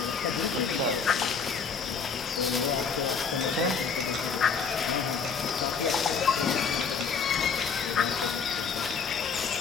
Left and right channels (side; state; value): right; quieter; 5.8 dB